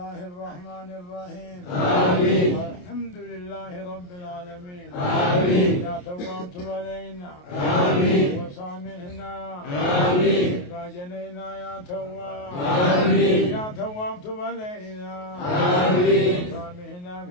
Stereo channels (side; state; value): right; late; 28 ms